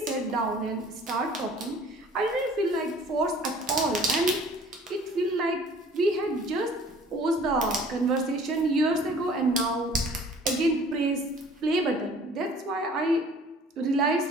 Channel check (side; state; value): both; normal; correlation 0.51